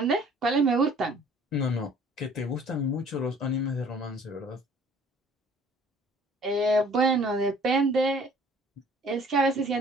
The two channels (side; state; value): both; normal; correlation 0.54